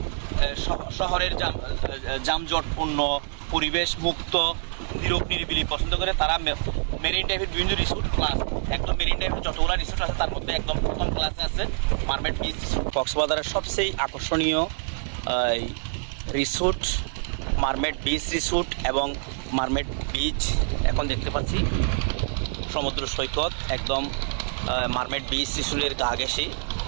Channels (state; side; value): silent; left; digital silence